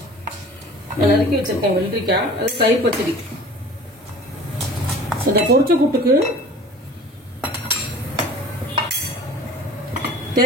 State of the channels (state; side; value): normal; both; correlation 0.44